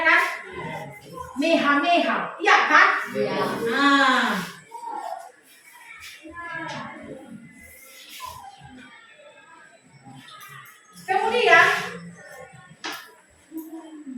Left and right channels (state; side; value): identical; both; correlation 1.00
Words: Meha, iya kan? Ya. Nah. Kemudian